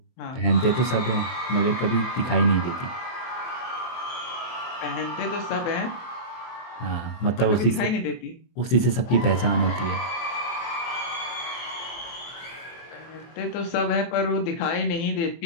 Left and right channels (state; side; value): late; right; 23 ms